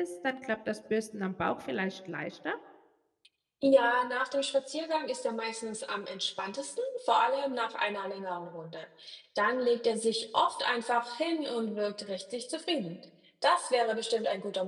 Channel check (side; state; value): both; identical; correlation 1.00